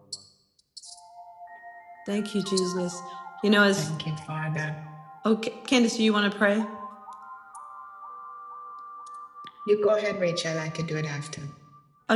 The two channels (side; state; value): both; identical; correlation 1.00